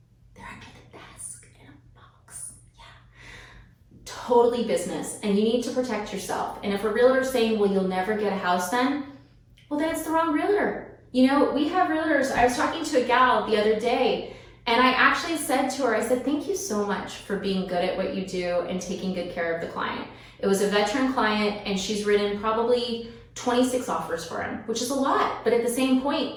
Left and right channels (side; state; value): both; identical; correlation 1.00